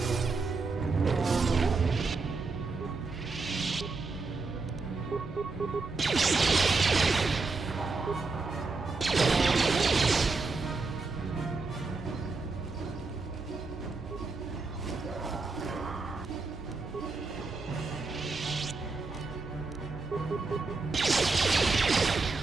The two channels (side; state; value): left; quieter; 4.0 dB